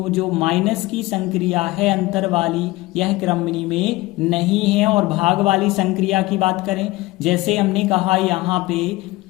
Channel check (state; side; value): quieter; right; 19.9 dB